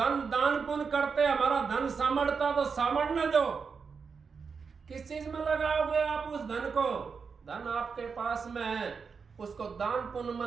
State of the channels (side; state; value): left; quieter; 5.6 dB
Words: दान पुण्य करते हमारा धन सामर्थता तो सामर्थने दो। किस चीज में लगाओगे आप उस धन को? धन आपके पास में है, उसको दान पुण्य में